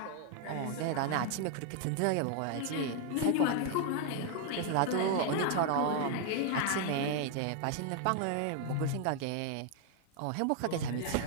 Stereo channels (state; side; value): different; both; correlation 0.00